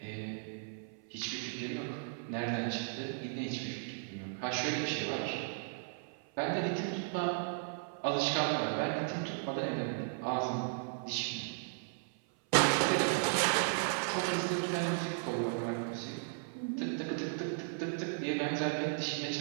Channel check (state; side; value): silent; left; 54 dB below the other